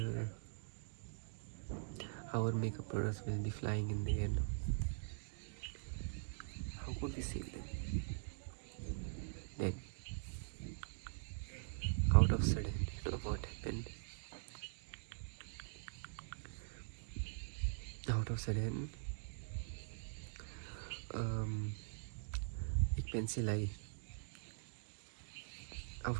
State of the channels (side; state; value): left; silent; digital silence